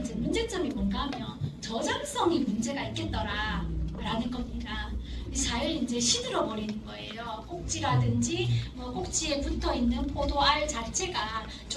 이제 문제점이 뭔가 하면 저장성이 문제가 있겠더라 라는 겁니다. 잘 이제 시들어 버리는 거예요. 꼭지라든지 뭐 꼭지에 붙어 있는 포도알 자체가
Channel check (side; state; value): both; identical; correlation 1.00